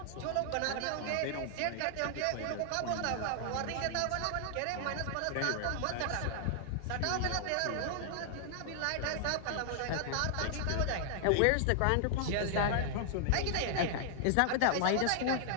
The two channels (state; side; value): different; both; correlation 0.00